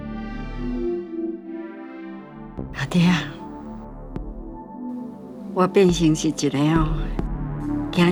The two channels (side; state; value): both; identical; correlation 1.00